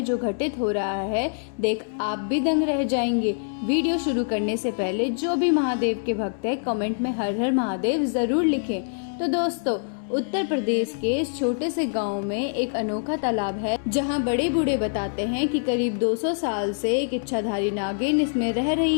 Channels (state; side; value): silent; right; digital silence